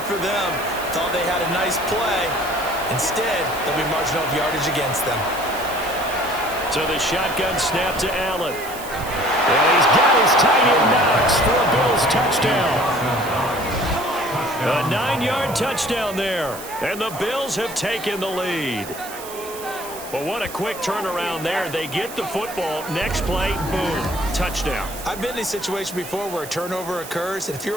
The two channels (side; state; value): right; noise; hiss, 13 dB below the sound